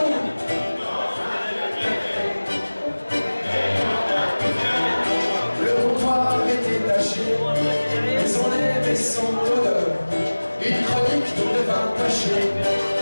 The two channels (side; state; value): both; inverted; correlation -1.00